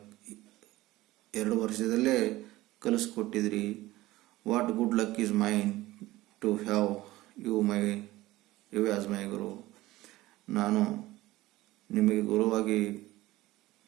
2 ವರ್ಷದಲ್ಲೇ ಕಲಿಸ್ಕೊಟ್ಟಿದ್ರಿ. What good luck is mine to have you as my guru. ನಾನು ನಿಮಗೆ ಗುರುವಾಗಿ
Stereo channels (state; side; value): quieter; left; 17.7 dB